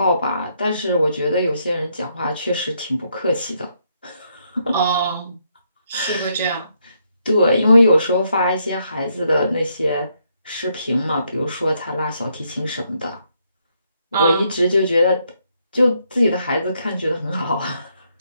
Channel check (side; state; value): both; inverted; correlation -0.75